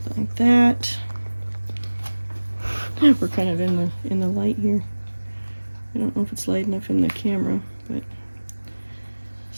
like that. We're kind of in the light here. I don't know if it's light enough in the camera, but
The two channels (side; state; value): both; inverted; correlation -1.00